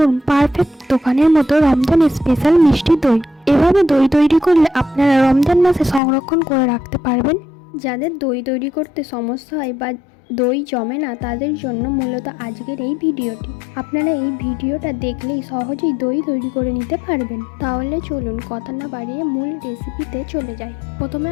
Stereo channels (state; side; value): drops out; right; at 6.0 s